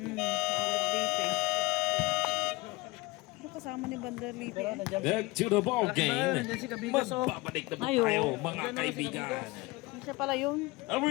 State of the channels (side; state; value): right; quieter; 22.7 dB